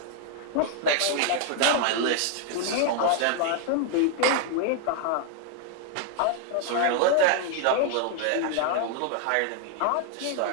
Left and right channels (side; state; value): both; different; correlation 0.00